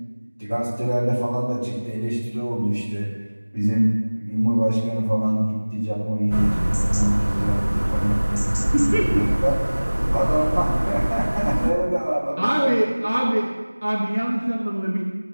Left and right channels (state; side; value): inverted; both; correlation -1.00